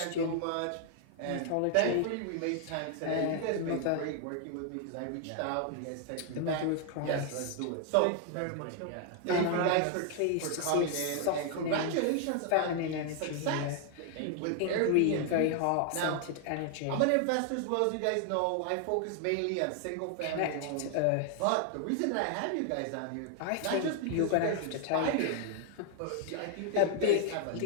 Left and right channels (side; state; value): both; different; correlation 0.00